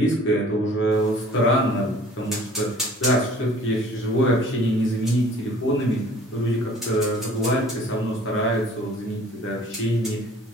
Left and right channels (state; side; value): normal; both; correlation 0.51